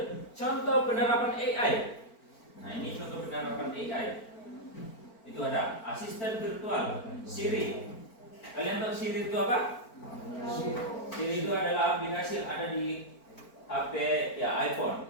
contoh penerapan AI. Nah ini contoh penerapan AI. Itu ada asisten virtual Siri. Kalian tahu Siri itu apa? Siri itu adalah aplikasi yang ada di HP ya iPhone.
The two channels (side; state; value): right; late; 4.4 ms